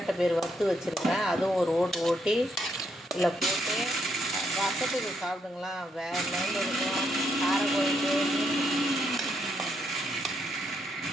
பேர் வறுத்து வச்சுருக்கேன், அதுவும் ஒரு ஓட்டு ஓட்டி இதில் போட்டு ரசத்துக்கு சாப்பிடுங்களா, வேறு லெவலில் இருக்கும். கார குழம்பு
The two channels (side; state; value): both; normal; correlation 0.76